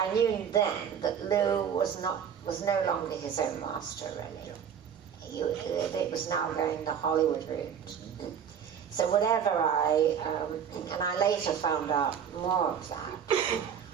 knew then that Lou was no longer his own master, really. It was now going the Hollywood route. So whatever and I later found out more of that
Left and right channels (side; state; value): left; quieter; 7.9 dB